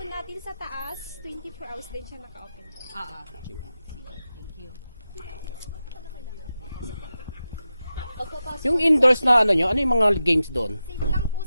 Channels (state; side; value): inverted; both; correlation -0.91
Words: natin sa taas, 24 hours din siya naka-open po. Sige. Thank you. Pagkapasok. Yung indoors na ano nyo, ano yung mga games doon? Same lang po